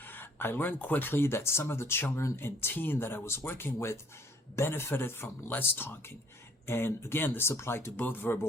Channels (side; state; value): both; normal; correlation 0.61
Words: I learned quickly that some of the children and teen that I was working with benefited from less talking. And again, this applied to both